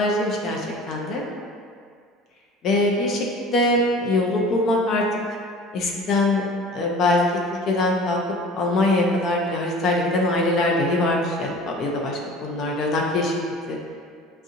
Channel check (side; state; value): both; normal; correlation 0.43